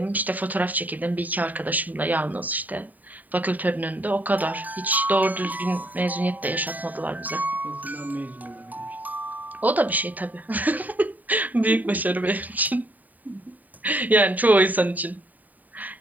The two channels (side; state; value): left; late; 0.081 ms